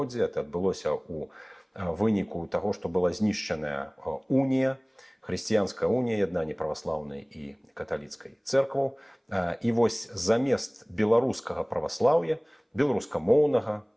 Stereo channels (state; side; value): identical; both; correlation 1.00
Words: Это адбылося ў выніку таго, што была знішчаная унія, хрысціянская унія, яднанне праваслаўнай і каталіцкай цэркваў. І вось замест беларускага праваслаўя, беларускамоўнага,